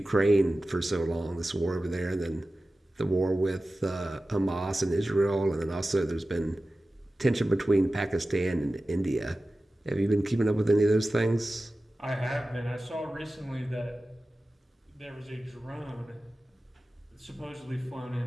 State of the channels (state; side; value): normal; both; correlation 0.95